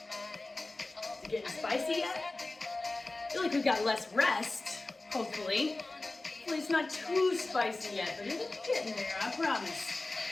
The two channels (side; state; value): right; quieter; 3.1 dB